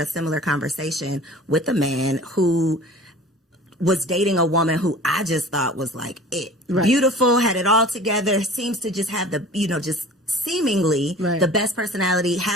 similar conversation with a man who was dating a woman who I just thought was like it. Beautiful, had it all together, seems to just have the, just seemingly the best personality,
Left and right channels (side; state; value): both; normal; correlation 0.43